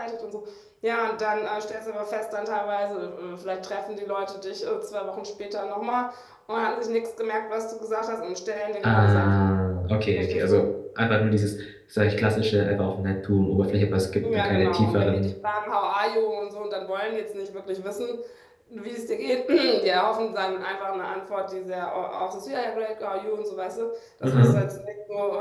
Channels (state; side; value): identical; both; correlation 1.00